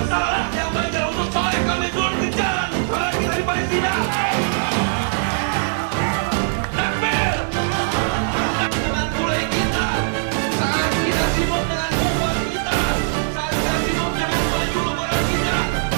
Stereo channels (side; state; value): left; silent; digital silence